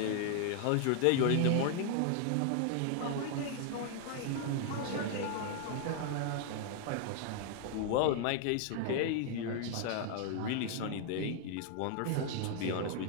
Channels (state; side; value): different; both; correlation 0.00